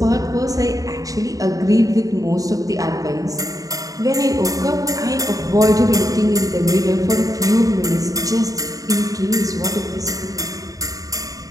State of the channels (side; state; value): left; late; 0.17 ms